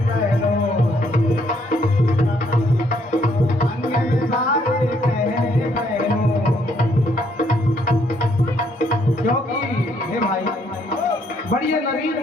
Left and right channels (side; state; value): both; normal; correlation 0.69